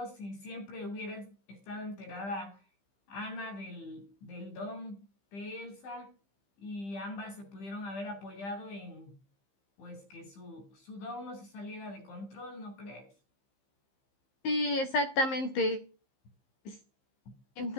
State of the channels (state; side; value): late; right; 15 ms